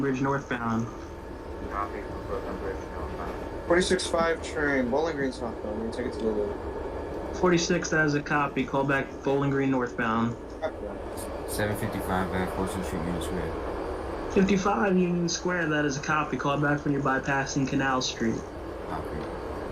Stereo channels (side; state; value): both; identical; correlation 1.00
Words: northbound. Copy from Brooklyn Bridge southbound. 46-5 train, Bowling Green southbound. We'll take it to the loop. 46, that is a copy. Call back Bowling Green northbound. 755 back, Folsom Street, Union Square. 55 Union Square, that is a copy. Call back when you're bypassing Canal Street. Copy.